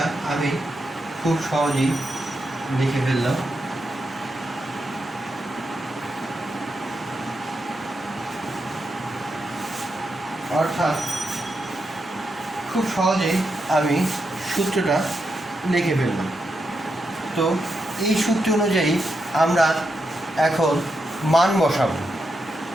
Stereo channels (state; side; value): normal; both; correlation 0.85